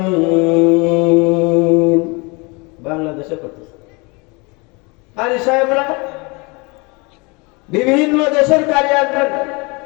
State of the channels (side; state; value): right; quieter; 28.3 dB